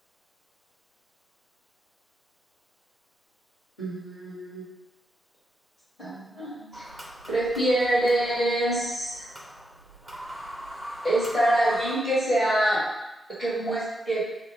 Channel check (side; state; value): both; normal; correlation 0.82